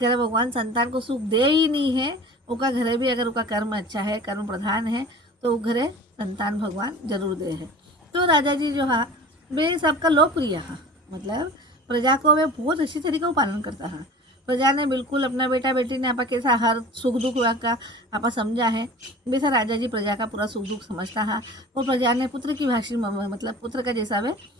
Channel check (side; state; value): both; normal; correlation 0.40